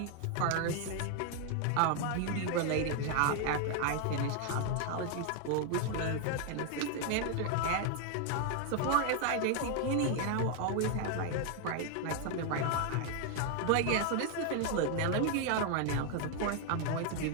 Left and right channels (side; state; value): both; different; correlation 0.00